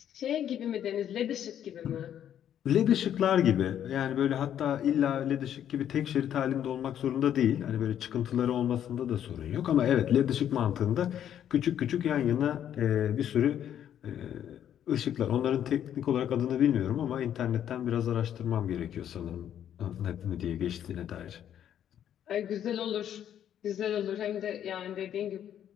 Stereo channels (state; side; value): quieter; right; 10.1 dB